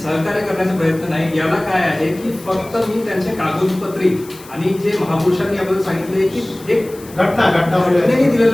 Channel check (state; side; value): noise; left; hiss, 20 dB below the sound